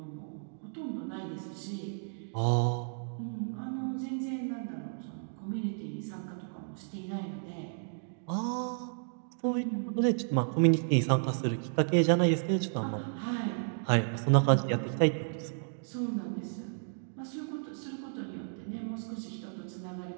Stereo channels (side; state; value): left; silent; digital silence